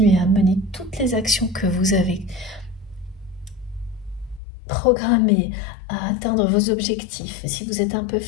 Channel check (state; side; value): drops out; right; at 4.4 s